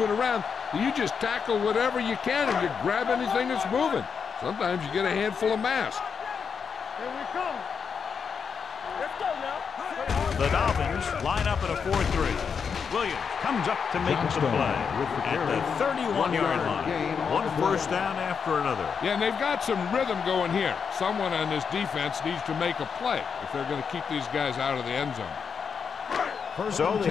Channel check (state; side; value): quieter; right; 6.3 dB